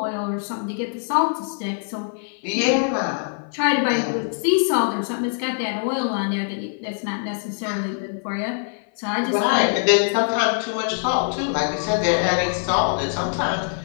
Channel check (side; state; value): right; silent; 55 dB below the other